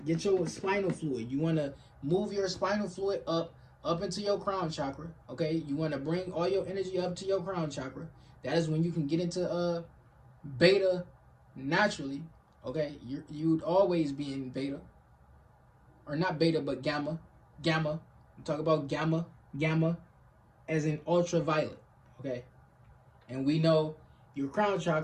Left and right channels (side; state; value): both; identical; correlation 1.00